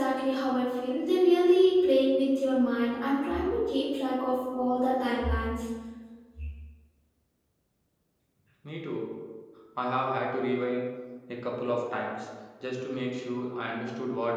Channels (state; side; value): identical; both; correlation 1.00